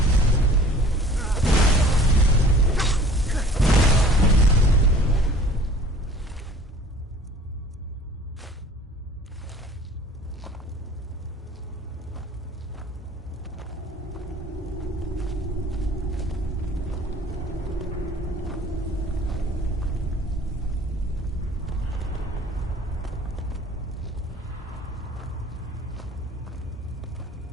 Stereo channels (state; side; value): normal; both; correlation 0.49